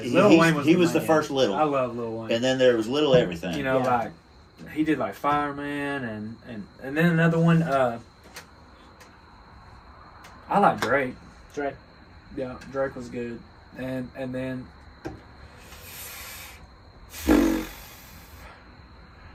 He- Lil he's- Wayne was he was the man. first little. I love Lil Wayne. And then there was little everything. You know, Yeah. like he did like Fireman and then another one. I like Drake. Drake. Yeah, Drake was good. And then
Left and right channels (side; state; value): both; identical; correlation 1.00